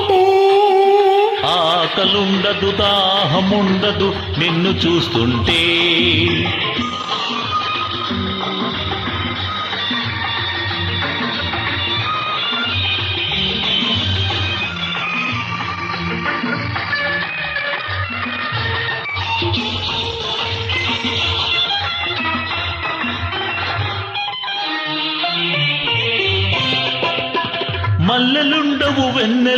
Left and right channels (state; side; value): identical; both; correlation 1.00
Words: ఆకలుండదు దాహముండదు నిన్ను చూస్తుంటే. మల్లెలుండవు